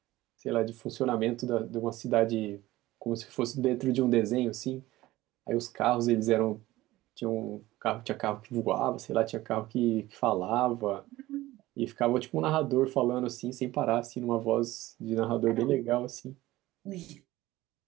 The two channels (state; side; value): quieter; left; 17.2 dB